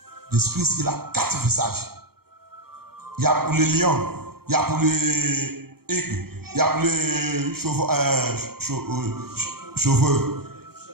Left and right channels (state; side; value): late; left; 0.95 ms